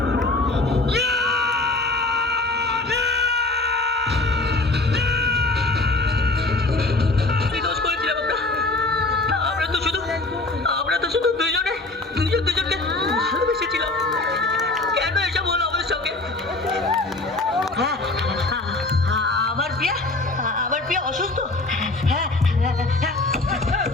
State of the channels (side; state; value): right; quieter; 3.1 dB